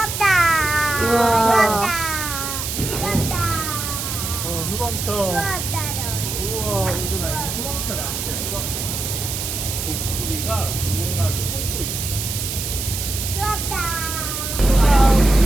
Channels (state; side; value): noise; right; hiss, 4 dB below the sound